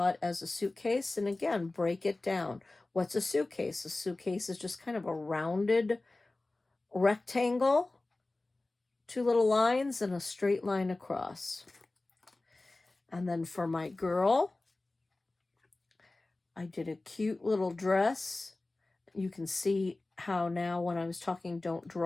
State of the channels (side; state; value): right; quieter; 3.0 dB